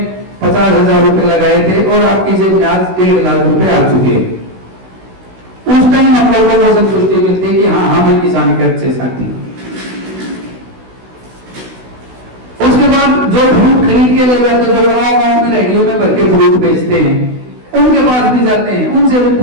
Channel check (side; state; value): left; late; 16 ms